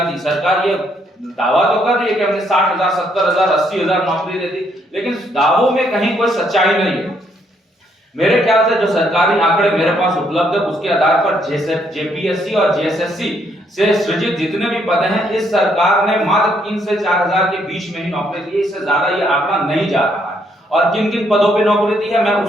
दी। सरकार ये दावा तो कर रही है कि हमने 60,000, 70,000, 80,000 नौकरी दे दी, लेकिन दावों में कहीं कोई सच्चाई नहीं है। मेरे ख्याल से जो सरकारी आंकड़े मेरे पास उपलब्ध है उसके आधार पर जेपीएससी और जेएसएससी से सृजित जितने भी पद हैं, इस सरकार ने मात्र 3 से 4,000 के बीच में ही नौकरी दी। इससे ज्यादा ये आंकड़ा नहीं जा रहा है। और किन किन पदों पे नौकरी दी है मैं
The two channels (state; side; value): normal; both; correlation 0.71